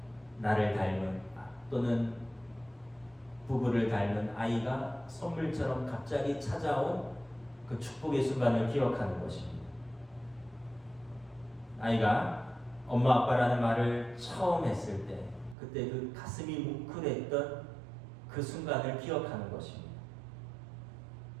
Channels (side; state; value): left; drops out; at 15.6 s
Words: 나를 닮은 또는 부부를 닮은 아이가 선물처럼 갑자기 찾아온 그 축복의 순간을 기억하는 것입니다. 아이가 엄마 아빠라는 말을 처음 했을 때 그때 그 가슴이 뭉클했던 그 순간을 기억하는 것입니다.